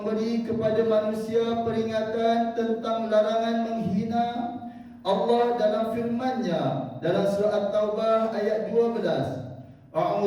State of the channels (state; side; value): identical; both; correlation 1.00